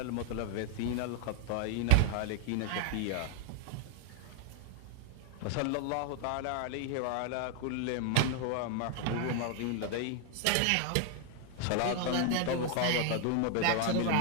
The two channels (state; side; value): different; both; correlation 0.00